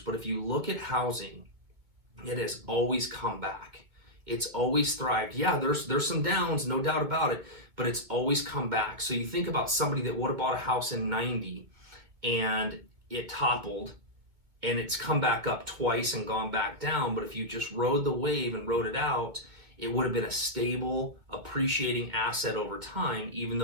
if you look at housing, it has always come back. It's always thrived. Yeah, there's some downs, no doubt about it, but it's always come back. So you think about somebody that would have bought a house in 90 and it toppled, and it's come back up twice and gone back down. But if you just rode the wave and rode it out, it would have been a stable, appreciating asset over time, even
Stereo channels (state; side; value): late; left; 2.3 ms